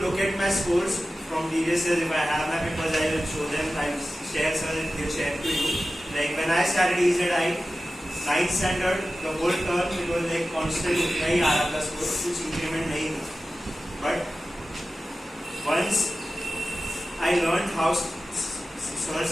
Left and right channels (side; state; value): both; normal; correlation 0.95